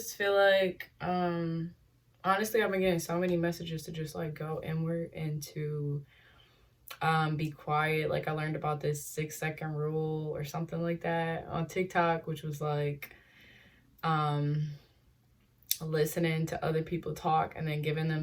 feel like honestly I've been getting so many messages to just like go inward and to be quiet. Like I learned about this 6 second rule or something like that on TikTok, which was like um listening to other people talk and then giving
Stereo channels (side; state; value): both; identical; correlation 1.00